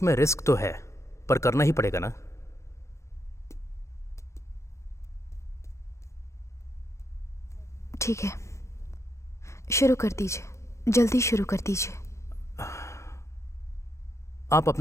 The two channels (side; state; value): right; late; 0.14 ms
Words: रिस्क तो है, पर करना ही पड़ेगा ना। ठीक है, शुरू कर दीजिए, जल्दी शुरू कर दीजिए। आप